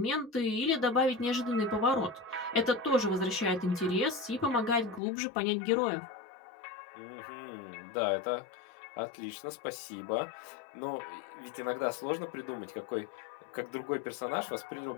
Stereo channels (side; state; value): right; drops out; at 5.0 s